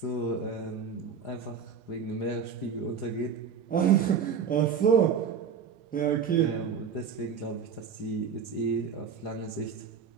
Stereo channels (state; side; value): quieter; left; 6.6 dB